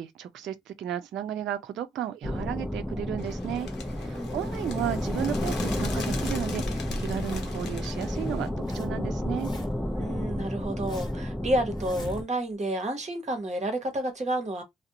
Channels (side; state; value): both; normal; correlation 0.73